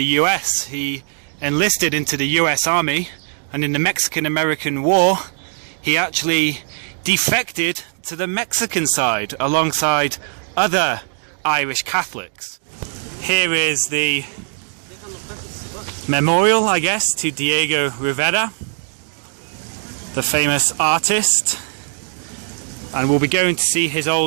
US. He enlisted into the US Army, and in the Mexican-American War he actually defected to the Mexican side alongside other Irish Catholics. Here is the memorial, I guess, to Diego Rivera, the famous artist, and we'll be going to see his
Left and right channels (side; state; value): left; silent; digital silence